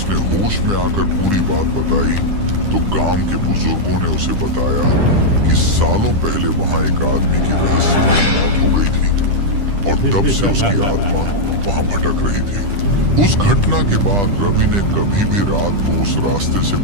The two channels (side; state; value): left; late; 10 ms